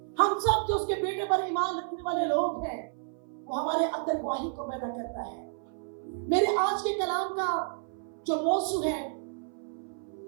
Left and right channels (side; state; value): left; silent; 56 dB below the other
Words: हम सब जो उसके बेटे पर ईमान रखने वाले लोग हैं वो हमारे अंदर गवाही को पैदा करता है। मेरे आज के कलाम का जो मौजू है